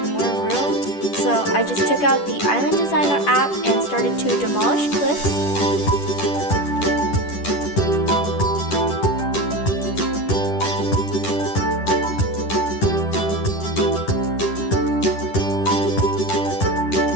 more room, so I just took out the Island Designer app and started to demolish cliffs.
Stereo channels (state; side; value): late; right; 10 ms